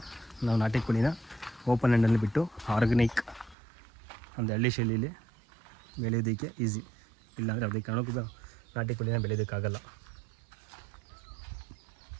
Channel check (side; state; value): left; drops out; at 3.6 s